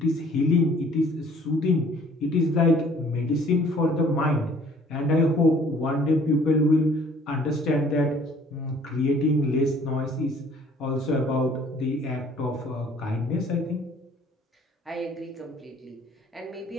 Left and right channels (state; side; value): normal; both; correlation 0.55